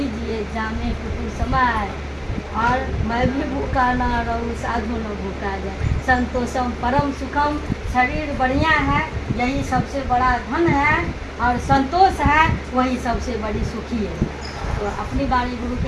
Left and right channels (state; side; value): identical; both; correlation 1.00